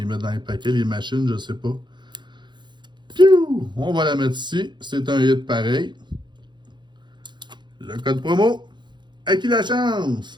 mettent dans les paquets, les machines, je sais pas. Piou! On va la mettre ici. C'est un hit pareil. Le code promo. À qui la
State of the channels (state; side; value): late; left; 0.22 ms